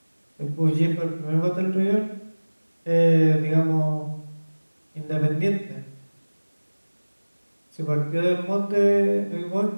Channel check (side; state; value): both; inverted; correlation -1.00